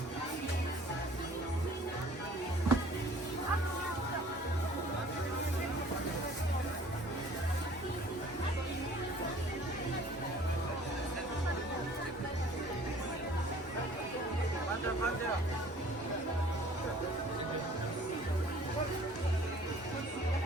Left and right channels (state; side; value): normal; both; correlation 0.52